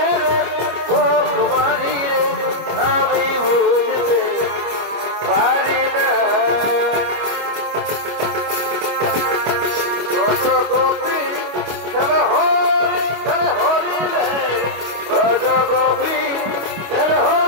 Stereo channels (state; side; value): late; left; 25 ms